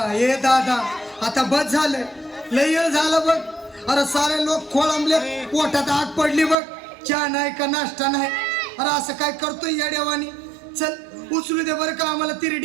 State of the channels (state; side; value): drops out; left; at 6.6 s